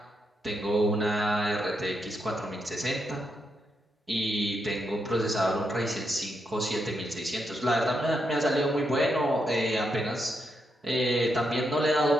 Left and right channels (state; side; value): normal; both; correlation 0.82